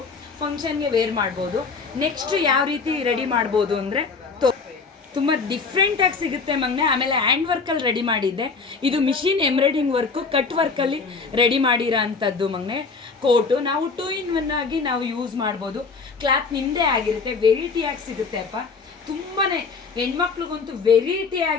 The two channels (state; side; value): quieter; right; 4.7 dB